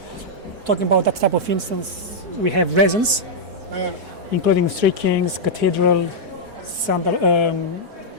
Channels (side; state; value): left; late; 4.6 ms